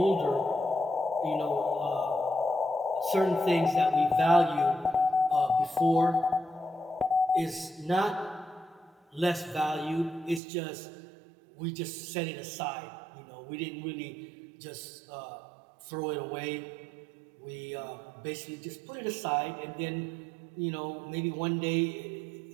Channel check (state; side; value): drops out; left; at 10.4 s